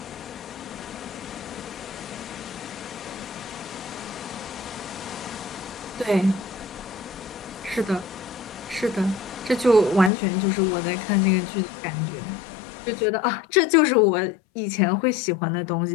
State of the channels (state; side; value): drops out; right; at 10.1 s